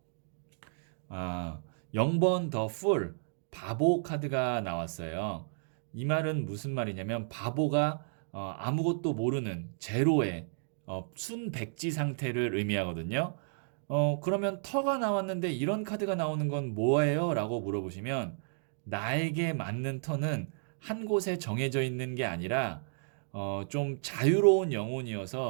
0번 더 풀, 바보 카드가 나왔어요. 이 말은 무슨 말이냐면 바보가 아무것도 모르는 제로의 순백지 상태를 의미하거든요. 그러면 터가 나왔는데 이런 카드가 나오는 건 뭐예요? 라고 물어보시면 나에게 맞는 터는 한 곳에 정해져 있는 게 아니라 좀 자유로운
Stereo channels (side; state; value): left; silent; digital silence